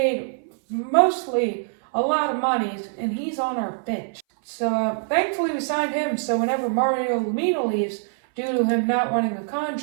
mostly a lot of money, and he's on our bench. So thankfully we signed him, so whenever Mario Lemina leaves, due to him not winning a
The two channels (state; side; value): silent; left; 59 dB below the other